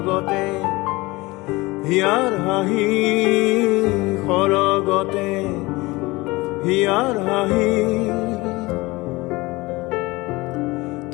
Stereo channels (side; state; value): right; quieter; 22.2 dB